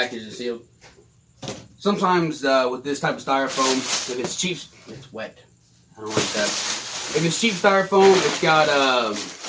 and sealed. Sometimes with this type of styrofoam, if it's cheap, it's wet. I don't like that. If it's cheap styrofoam, it's got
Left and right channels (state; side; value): identical; both; correlation 1.00